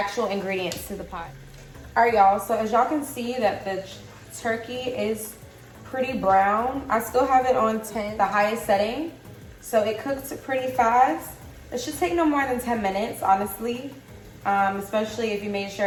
ingredients to the pot. All right, y'all, so as y'all can see that the turkey is pretty brown. I still have it on 10, the highest setting, so it cooks pretty fast. It should take no more than 10 minutes, honestly. Especially if you made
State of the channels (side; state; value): both; identical; correlation 1.00